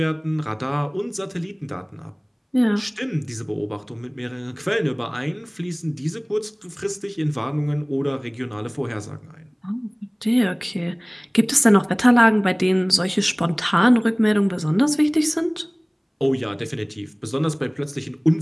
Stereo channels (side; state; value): both; identical; correlation 1.00